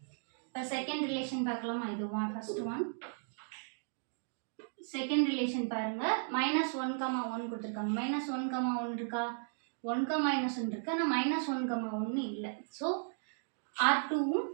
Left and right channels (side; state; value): left; silent; digital silence